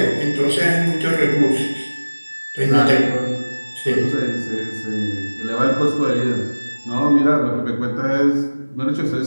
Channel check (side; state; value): both; inverted; correlation -1.00